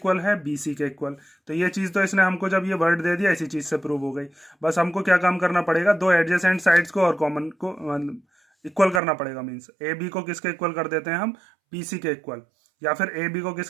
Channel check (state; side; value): drops out; left; at 9.0 s